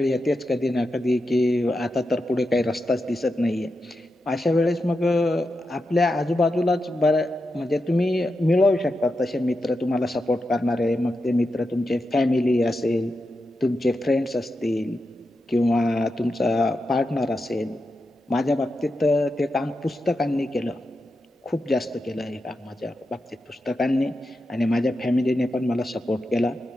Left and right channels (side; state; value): both; normal; correlation 0.88